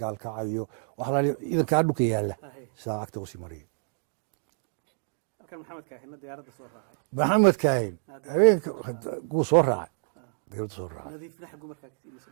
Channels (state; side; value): silent; left; digital silence